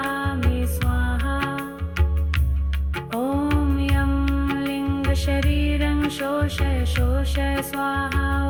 स्वाहा। ॐ यं लिङ्गशरीरं शोष शोष स्वाहा।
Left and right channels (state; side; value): identical; both; correlation 1.00